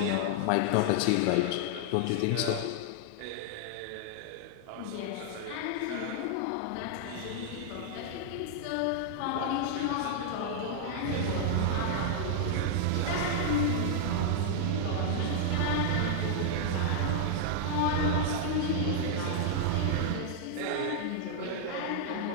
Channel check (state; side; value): different; both; correlation -0.01